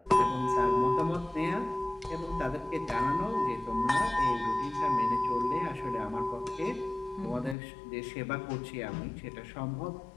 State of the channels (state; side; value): drops out; right; at 7.6 s